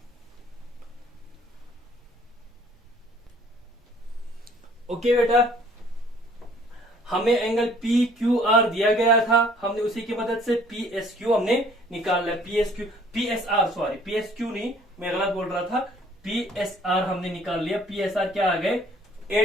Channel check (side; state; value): both; normal; correlation 0.57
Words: ओके बेटा, हमें एंगल पी क्यू आर दिया गया था, हमने उसी की मदद से पी एस क्यू हमने निकाल लिया, पी एस क्यू नहीं, मैं गलत बोल रहा था, पी एस आर हमने निकाल लिया। पी एस आर क्या आ गए,